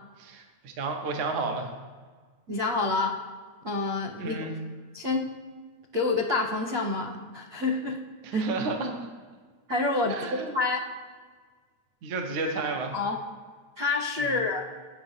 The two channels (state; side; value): late; left; 8.5 ms